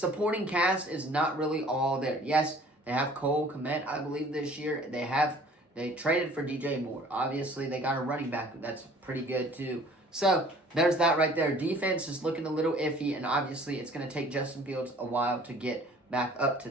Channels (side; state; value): both; normal; correlation 0.52